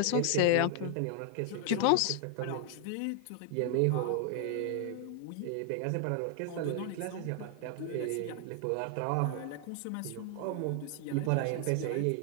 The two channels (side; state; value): both; different; correlation 0.00